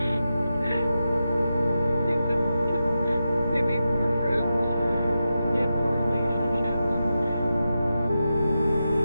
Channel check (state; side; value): inverted; both; correlation -0.89